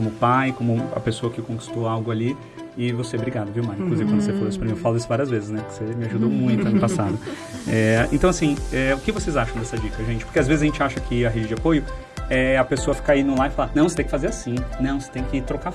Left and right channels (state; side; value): identical; both; correlation 1.00